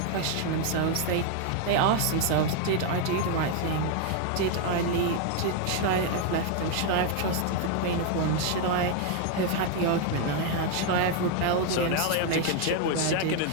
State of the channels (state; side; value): different; both; correlation 0.01